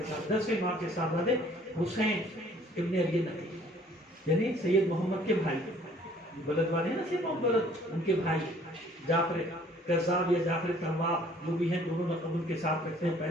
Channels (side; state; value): both; normal; correlation 0.57